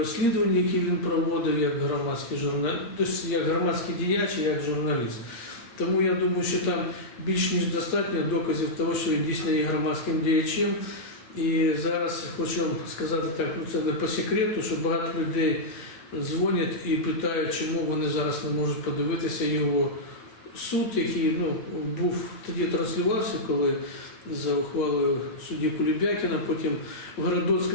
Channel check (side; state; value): right; late; 8.4 ms